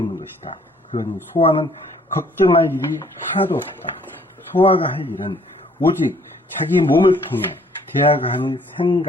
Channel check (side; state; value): both; normal; correlation 0.61